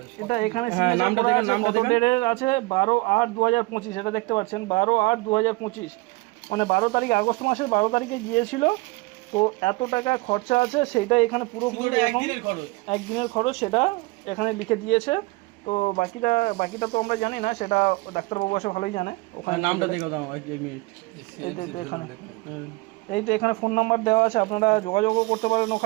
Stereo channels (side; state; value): left; quieter; 23.5 dB